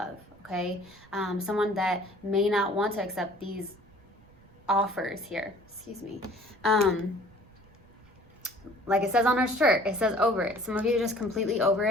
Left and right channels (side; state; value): right; noise; rumble, 27 dB below the sound